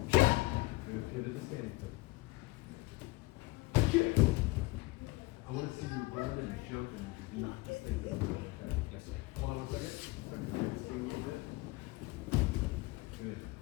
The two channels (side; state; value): right; quieter; 22.1 dB